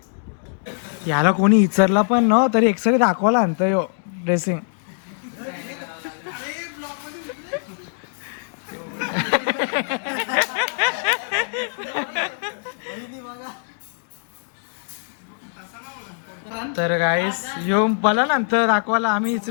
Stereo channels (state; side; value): silent; right; 64 dB below the other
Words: याला कोणी विचारला पण न तरी एक्सरे दाखवायला आणतं यो ड्रेसिंग. तर गाईस यो मला नंतर दाखवायला आम्ही